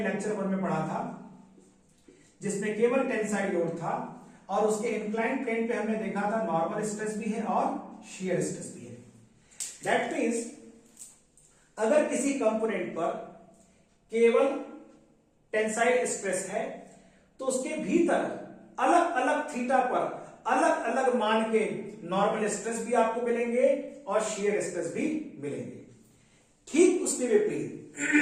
लेक्चर 1 में पढ़ा था, जिसमें केवल टेंसाइल लोड था और उसके इंक्लाइंड प्लेन पे हमने देखा था नॉर्मल स्ट्रेस भी है और शेयर स्ट्रेस भी है. दैट मीन्स अगर किसी कंपोनेंट पर केवल टेंसाइल स्ट्रेस है, तो उसके भीतर अलग अलग थीटा पर अलग अलग मान के नॉर्मल स्ट्रेस भी आपको मिलेंगे और शेयर स्ट्रेस भी मिलेंगे. ठीक उसके विपरीत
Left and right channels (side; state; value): both; identical; correlation 1.00